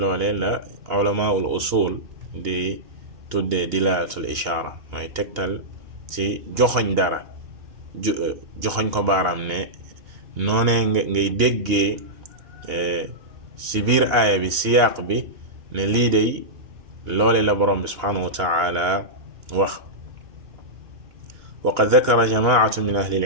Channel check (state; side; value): late; left; 2.8 ms